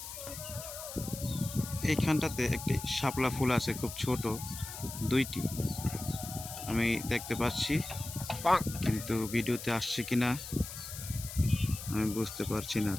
এইখানটাতে একটি শাপলা ফুল আছে, খুব ছোট, দুইটি আমি দেখতে পাচ্ছি, কিন্তু ভিডিওতে আসছে কিনা আমি বুঝতে পারছি না।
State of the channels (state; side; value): noise; left; hiss, 10 dB below the sound